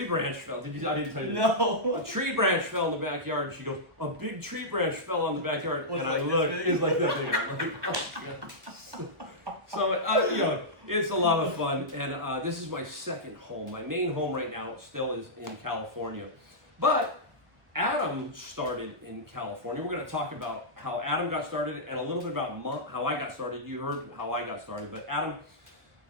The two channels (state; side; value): late; left; 1.3 ms